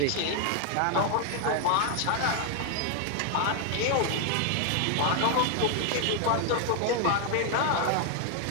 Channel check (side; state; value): both; different; correlation 0.00